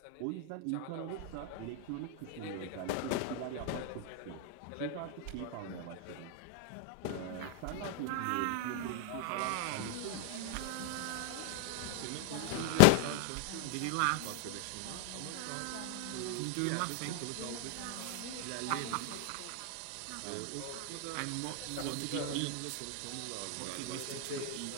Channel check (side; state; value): both; different; correlation 0.00